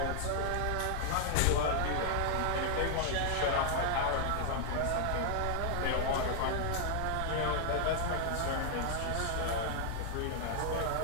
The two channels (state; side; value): different; both; correlation 0.00